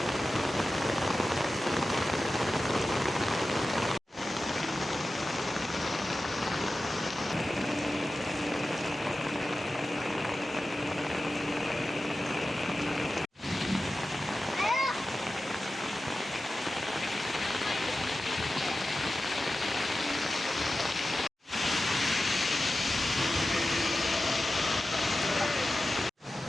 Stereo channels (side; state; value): both; normal; correlation 0.94